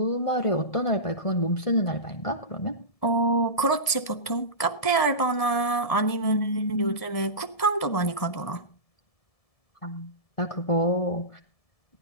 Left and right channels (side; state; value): right; late; 1.7 ms